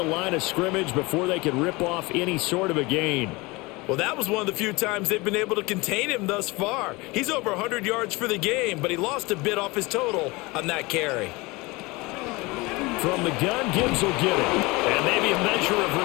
line of scrimmage before they could rip off any sort of a gain. Well, that was one of the few times they've been able to contain him thus far. He's over 100 yards for the game, but he lost a bit off his total on that carry. From the gun, Gibbs will get it. And maybe a measure of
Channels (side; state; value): right; quieter; 23.8 dB